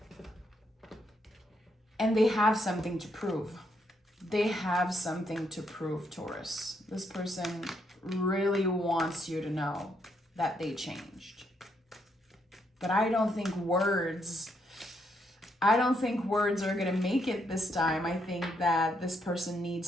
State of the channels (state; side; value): normal; both; correlation 0.76